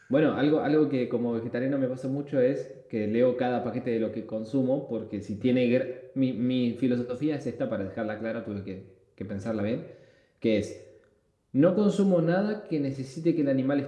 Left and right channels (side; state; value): both; identical; correlation 1.00